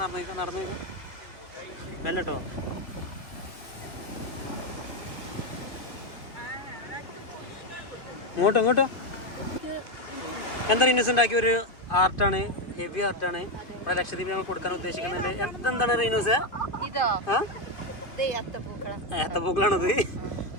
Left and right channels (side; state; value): right; late; 2.5 ms